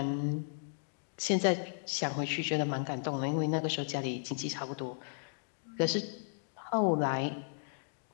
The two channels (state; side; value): silent; right; digital silence